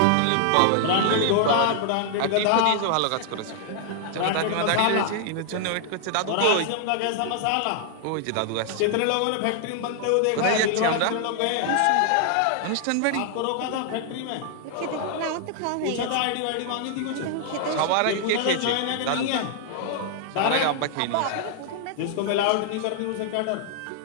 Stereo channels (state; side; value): different; both; correlation 0.00